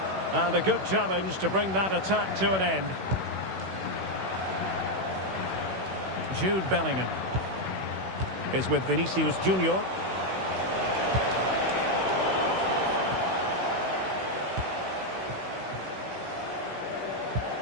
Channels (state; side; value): late; left; 16 ms